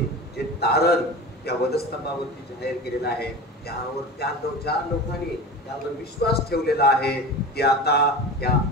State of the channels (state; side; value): normal; both; correlation 0.31